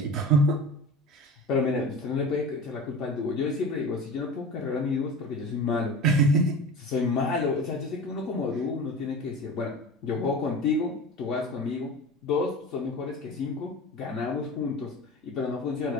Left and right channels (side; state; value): both; normal; correlation 0.33